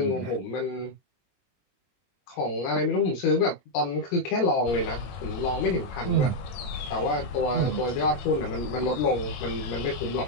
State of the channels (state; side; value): late; right; 21 ms